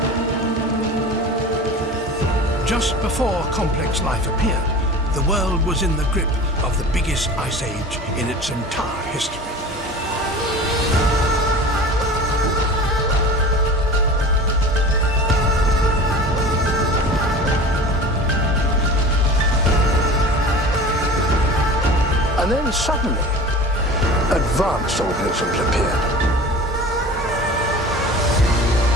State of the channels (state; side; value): normal; both; correlation 0.37